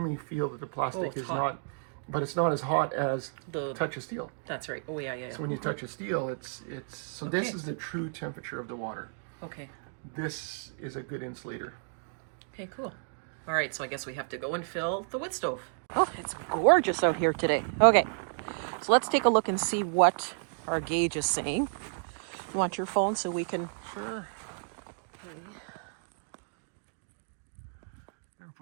feel that the plastic is hot. not, but it's not as hot as The touch of steel. That's right. Oh yeah, yeah. So when you touch a steel, it's so this is the true temperature of the water. Okay. This is a good insulator. Okay, cool. All right, so I guess we have to go and fill the wood stove. Oh, it's gorgeous out here today. Okay, so let's take a look and see what our gauge is saying. You want your phone so we can... Sure. I'm gonna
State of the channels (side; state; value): left; silent; digital silence